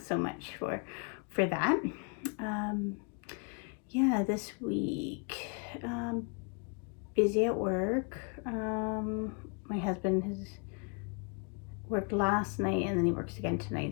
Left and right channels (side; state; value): right; quieter; 37.1 dB